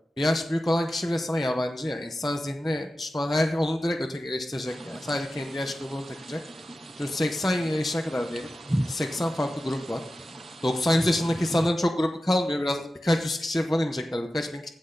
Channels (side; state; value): both; normal; correlation 0.93